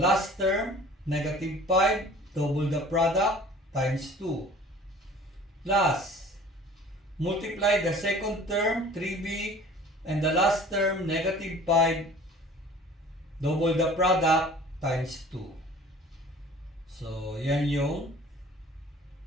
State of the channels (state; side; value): normal; both; correlation 0.47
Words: term negative 5, double the product times 2 plus multiply the second term 3b and the last term negative 5, double the product times 2. So yan yung